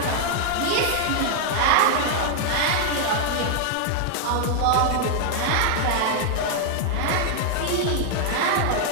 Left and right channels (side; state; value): both; different; correlation 0.00